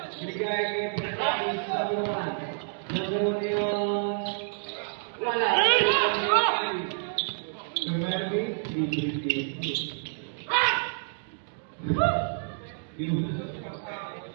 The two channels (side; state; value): left; silent; digital silence